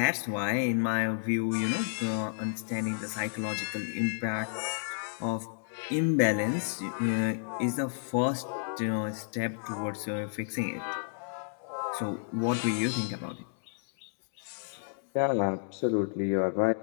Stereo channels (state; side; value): silent; right; digital silence